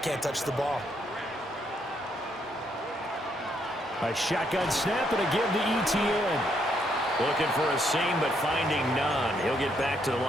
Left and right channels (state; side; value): normal; both; correlation 0.74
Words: touch the ball. A shotgun snap and a give to ETN. Looking for a seam, but finding none. He'll get back to the